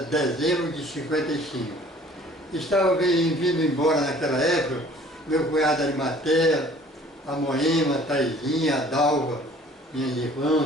dezembro de 55. Estava vindo embora naquela época, meu cunhado Arimatea, a Moema, a Taizinha, a Dalva, minhas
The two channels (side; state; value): both; normal; correlation 0.52